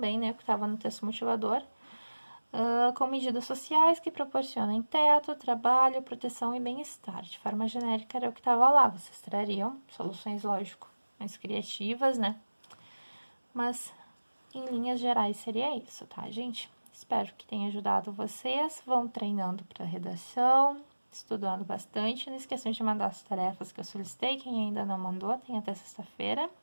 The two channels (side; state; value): both; inverted; correlation -1.00